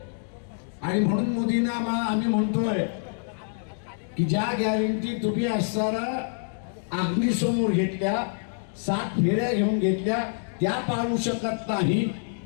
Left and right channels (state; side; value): silent; right; digital silence